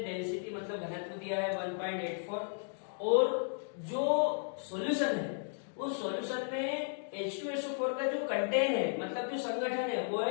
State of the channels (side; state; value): right; silent; digital silence